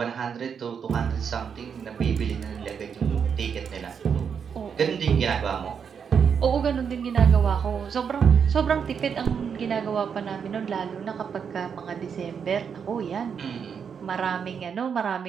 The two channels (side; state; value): left; quieter; 6.9 dB